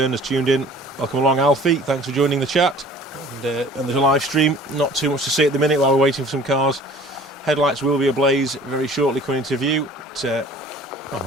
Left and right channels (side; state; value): both; normal; correlation 0.48